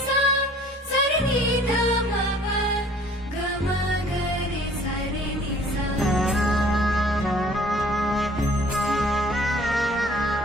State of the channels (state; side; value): normal; both; correlation 0.53